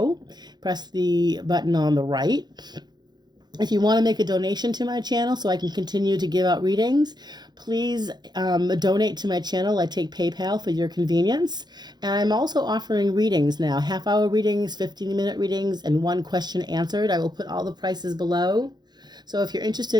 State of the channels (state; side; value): late; left; 0.21 ms